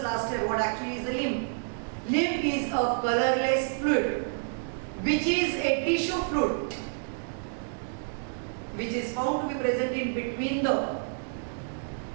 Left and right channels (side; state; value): left; silent; digital silence